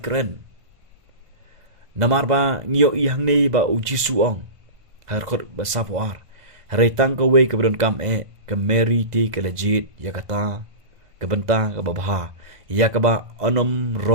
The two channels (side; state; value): left; late; 1.5 ms